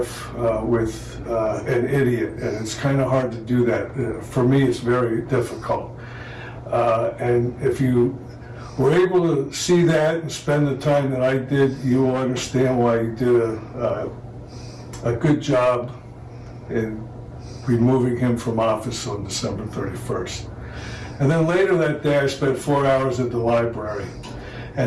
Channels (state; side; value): identical; both; correlation 1.00